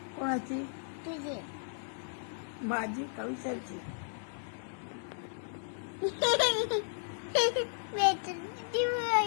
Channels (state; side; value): silent; right; digital silence